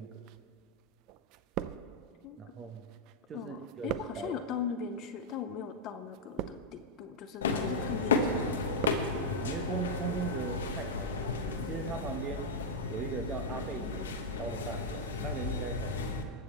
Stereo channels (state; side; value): normal; both; correlation -0.05